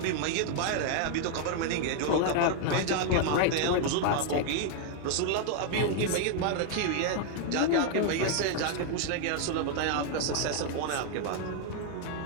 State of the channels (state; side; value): different; both; correlation 0.00